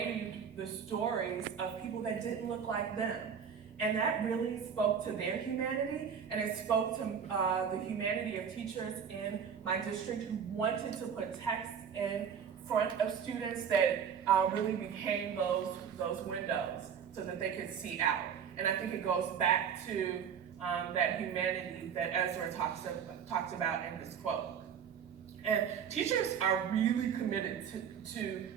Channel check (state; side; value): quieter; left; 7.4 dB